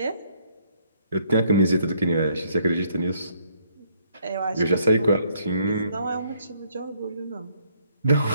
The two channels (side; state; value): both; inverted; correlation -0.68